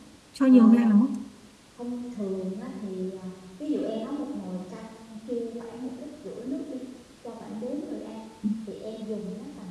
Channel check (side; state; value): both; identical; correlation 1.00